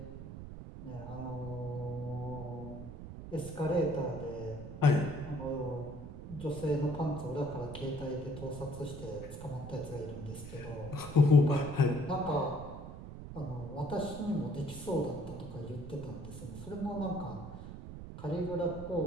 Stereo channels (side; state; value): right; noise; rumble, 10 dB below the sound